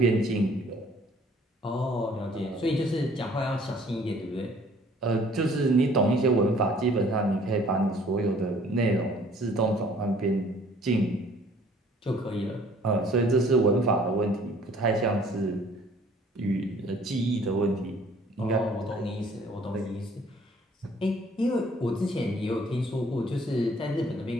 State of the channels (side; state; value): both; normal; correlation 0.56